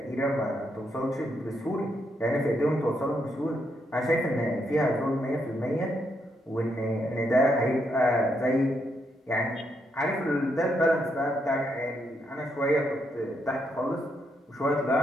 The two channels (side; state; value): both; normal; correlation 0.78